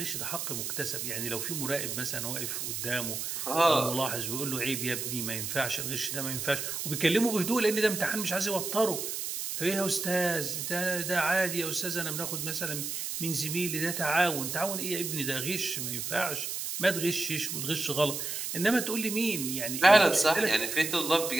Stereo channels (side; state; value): right; noise; hiss, 4 dB below the sound